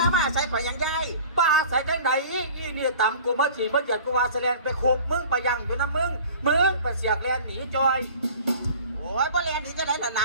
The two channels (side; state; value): both; inverted; correlation -0.44